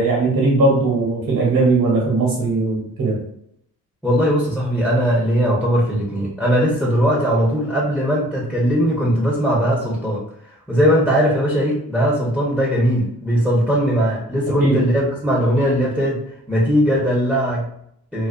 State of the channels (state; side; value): normal; both; correlation 0.54